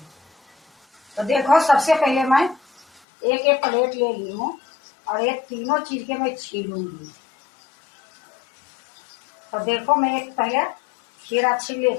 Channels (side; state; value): right; drops out; at 3.0 s